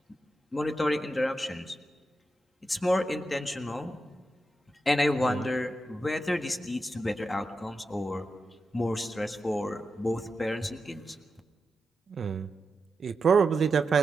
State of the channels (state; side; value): normal; both; correlation 0.89